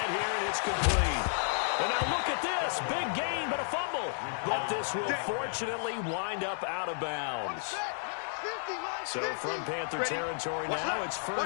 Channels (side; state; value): right; silent; digital silence